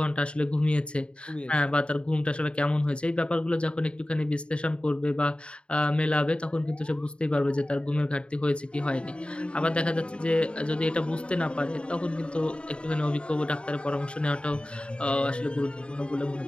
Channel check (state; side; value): late; right; 0.056 ms